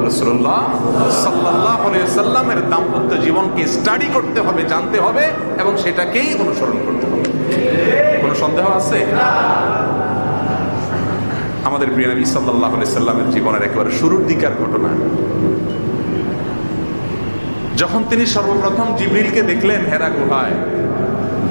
রাসূলুল্লাহ সাল্লাল্লাহু আলাইহি ওয়াসাল্লামের দাম্পত্য জীবনকে স্টাডি করতে হবে, জানতে হবে এবং সেটাকেই অনুসরণ করতে হবে। কোনো সন্দেহ আছে? আমাদের প্রিয় নবী সাল্লাল্লাহু আলাইহি ওয়াসাল্লামের জীবনের একেবারে শুরুর দিকের ঘটনা, যখন তিনি সর্বপ্রথম জিবরিলকে দেখলেন হেরা গুহায়,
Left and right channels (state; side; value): inverted; both; correlation -1.00